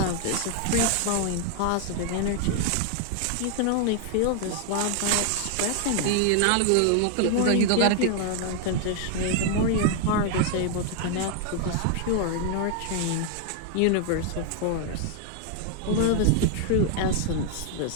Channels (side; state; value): both; different; correlation 0.00